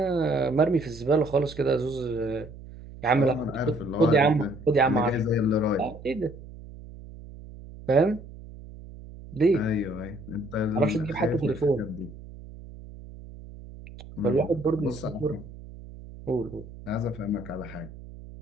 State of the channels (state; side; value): noise; right; hum, 16 dB below the sound